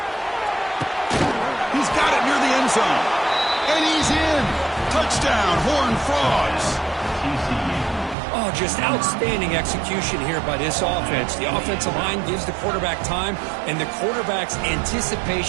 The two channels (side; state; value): left; drops out; at 8.2 s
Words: He's got it near the end zone. And he's in. Touchdown, Horned Frogs. Oh, just outstanding execution here by this offense. The offensive line gives the quarterback time, and the quarterback's